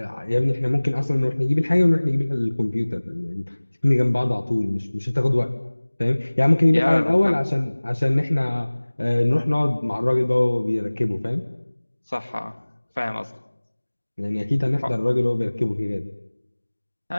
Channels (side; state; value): both; inverted; correlation -1.00